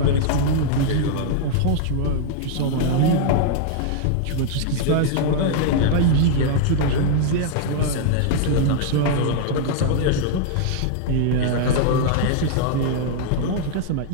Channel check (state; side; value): different; both; correlation -0.01